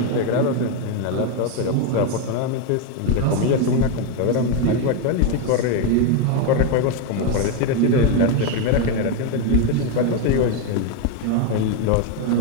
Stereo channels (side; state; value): both; different; correlation 0.02